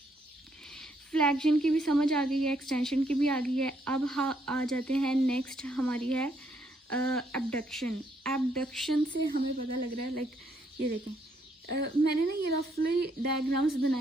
फ्लेक्शन की भी समझ आ गई है, एक्सटेंशन की भी आ गई है। अब आ जाते हैं नेक्स्ट हमारी है एबडक्शन। एबडक्शन से हमें पता लग रहा है, लाइक ये देखें, मैंने ना ये रफली डायग्राम्स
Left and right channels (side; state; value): both; normal; correlation 0.72